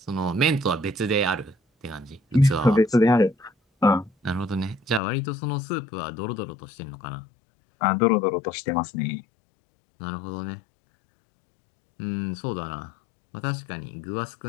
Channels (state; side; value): drops out; right; at 5.0 s